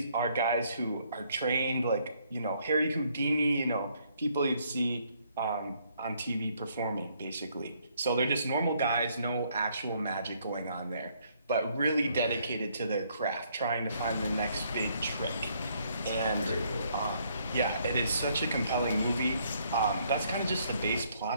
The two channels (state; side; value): inverted; both; correlation -0.68